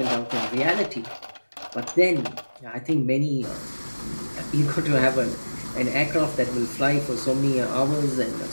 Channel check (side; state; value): both; inverted; correlation -1.00